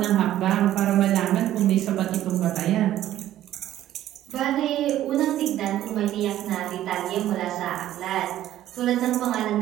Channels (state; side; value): quieter; left; 12.9 dB